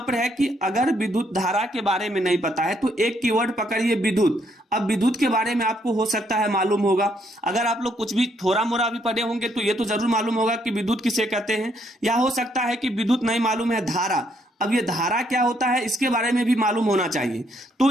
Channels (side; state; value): both; normal; correlation 0.71